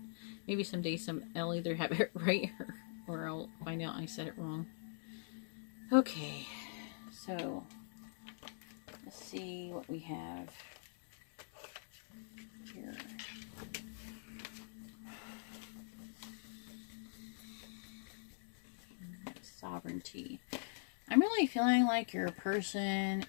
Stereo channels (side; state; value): right; silent; digital silence